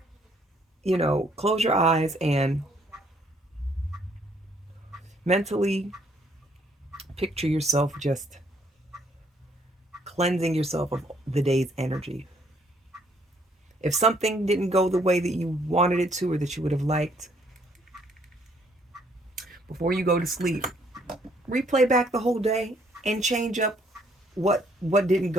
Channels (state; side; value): normal; both; correlation 0.66